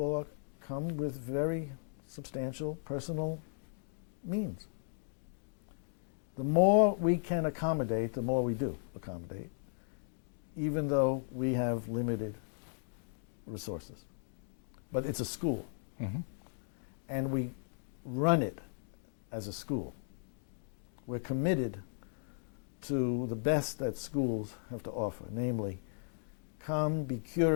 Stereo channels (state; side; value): silent; right; digital silence